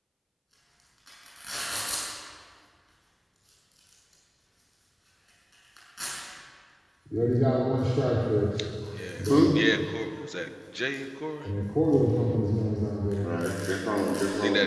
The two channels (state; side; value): identical; both; correlation 1.00